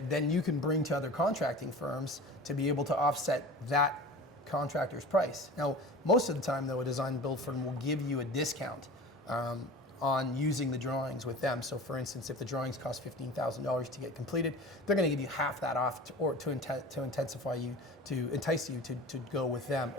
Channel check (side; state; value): both; normal; correlation 0.37